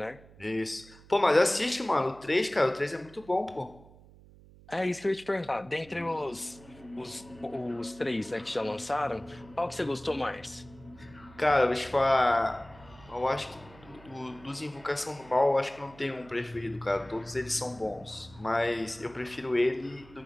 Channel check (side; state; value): right; noise; hum, 23 dB below the sound